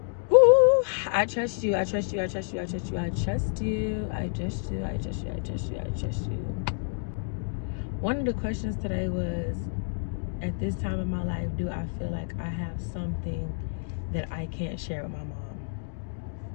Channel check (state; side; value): silent; right; digital silence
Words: Woo! I trust you. I trust you. I trust you. I trust you. I trust you. I trust you. I trust you. I trust you. I trust you. One of the questions today was, at this time in my life, do I feel like I have something that I can't share with my mom?